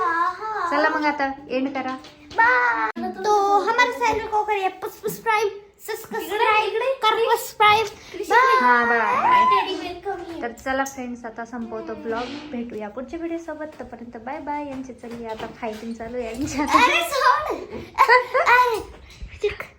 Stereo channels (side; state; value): both; identical; correlation 1.00